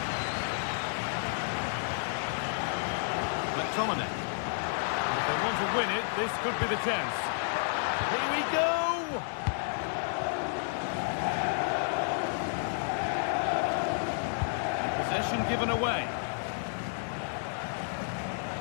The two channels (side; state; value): right; silent; digital silence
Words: McTominay. If they want to win it, this could be the chance. Here we go! And possession given away.